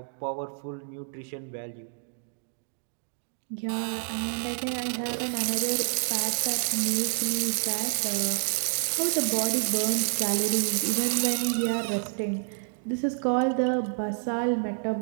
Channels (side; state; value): left; silent; digital silence